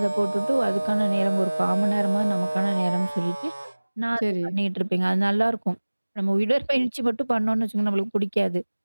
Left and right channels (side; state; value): both; inverted; correlation -1.00